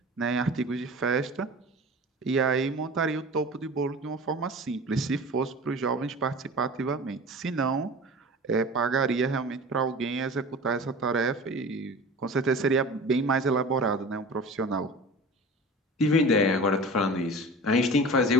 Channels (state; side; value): normal; both; correlation 0.37